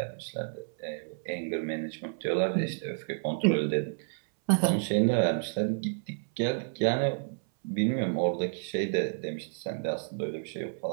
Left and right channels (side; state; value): left; silent; 58 dB below the other